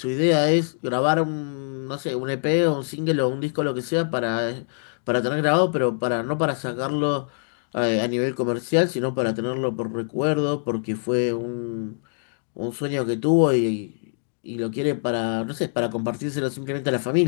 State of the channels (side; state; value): right; silent; digital silence